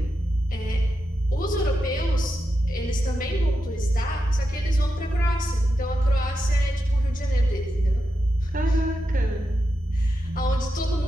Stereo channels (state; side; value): normal; both; correlation 0.88